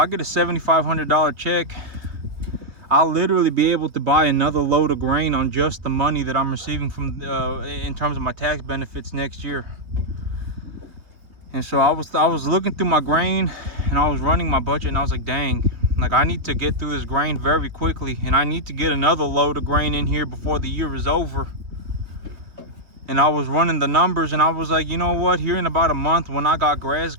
get a $7,500 check, I'll literally be able to buy another load of grain on just the money that I'm receiving from in terms of my tax benefits next year. And so I was looking through my grain and I was running my budget, and I was like, dang, like I need to get through this grain very quickly, and I need to get another load of grain in here before the year is over. And I was running the numbers and I was like, you know what, here in about a month when I got grass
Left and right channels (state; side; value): late; left; 3.5 ms